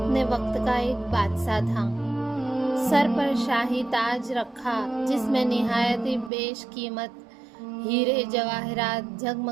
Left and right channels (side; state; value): left; drops out; at 6.3 s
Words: وقت کا ایک بادشاہ تھا، سر پر شاہی تاج رکھا جس میں نہایت بیش قیمت ہیرے جواہرات